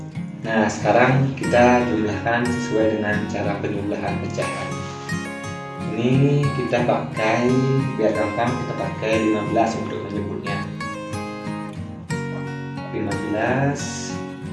Nah, sekarang kita jumlahkan sesuai dengan cara penjumlahan pecahan. Ini kita pakai, biar gampang kita pakai 15 untuk menyebutnya. 15.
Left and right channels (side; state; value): both; identical; correlation 1.00